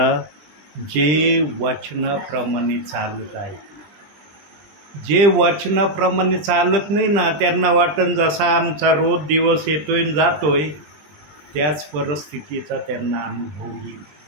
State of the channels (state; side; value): late; left; 20 ms